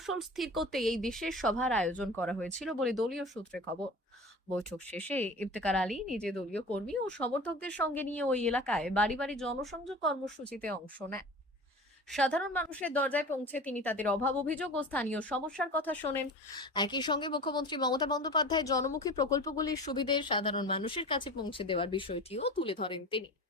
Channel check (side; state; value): both; normal; correlation 0.36